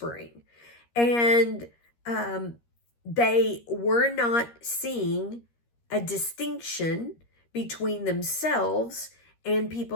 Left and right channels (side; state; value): right; late; 13 ms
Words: And they were not seeing a distinction between themselves and